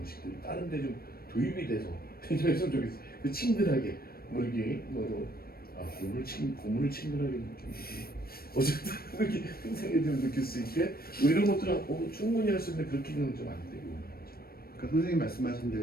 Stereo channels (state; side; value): late; right; 0.44 ms